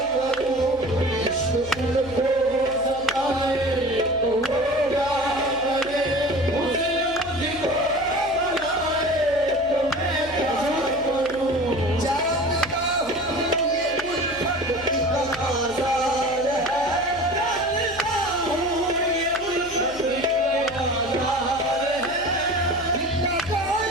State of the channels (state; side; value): noise; left; hum, 19 dB below the sound